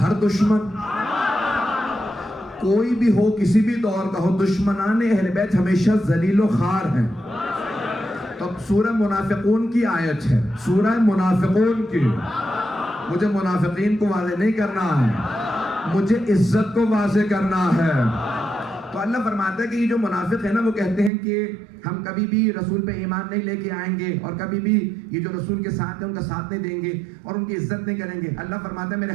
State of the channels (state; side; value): drops out; left; at 21.1 s